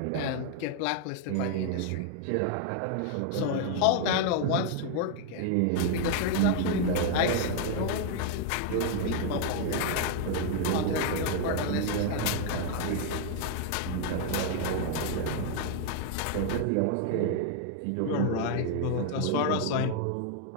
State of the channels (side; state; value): both; different; correlation 0.00